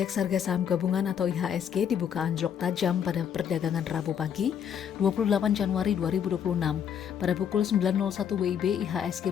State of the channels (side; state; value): right; quieter; 8.5 dB